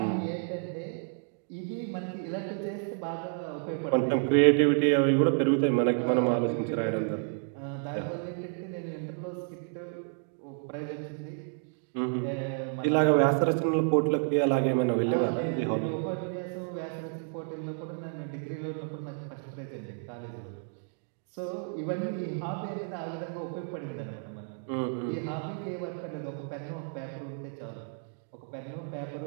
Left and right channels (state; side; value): silent; left; 57 dB below the other